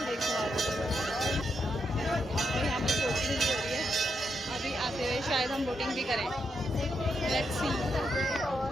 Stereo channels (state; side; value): normal; both; correlation 0.82